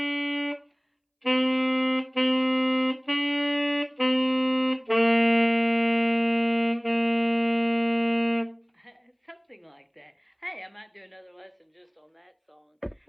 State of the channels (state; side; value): identical; both; correlation 1.00